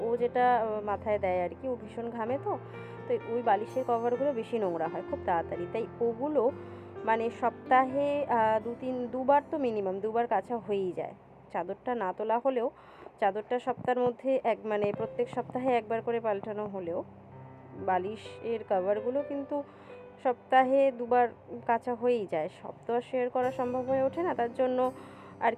ও যেটা মাথায় দেয় আর কি, ও ভীষণ ঘামে, তো তো ওই বালিশের কভারগুলো বেশি নোংরা হয় খুব তাড়াতাড়ি, তাই ওগুলো মানে সপ্তাহে দুবার তো মিনিমাম দুবার কাচা হয়েই যায়। চাদরটা না তোলা হলেও চাদরটা সপ্তাহের মধ্যে মানে প্রত্যেক সপ্তাহে একবার করে পাল্টানো হলেও বালিশের কভারগুলো কিন্তু সপ্তাহে দুবার কাচা হয়েই যায়। সব তো আর শেয়ার করা সম্ভব হয়ে ওঠে না, তার জন্য আর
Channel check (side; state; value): both; identical; correlation 1.00